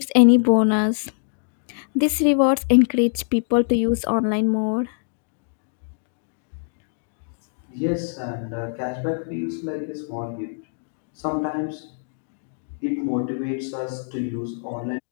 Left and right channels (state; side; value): silent; right; digital silence